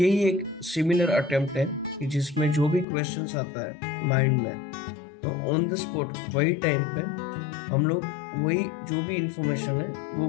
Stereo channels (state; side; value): drops out; right; at 2.9 s